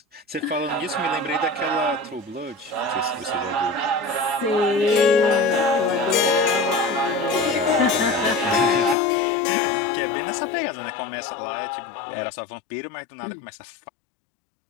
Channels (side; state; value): right; drops out; at 9.0 s